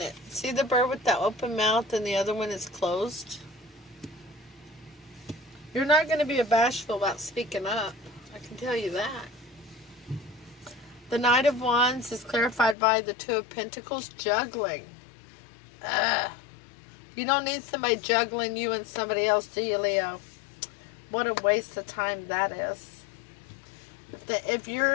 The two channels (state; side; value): drops out; right; at 12.8 s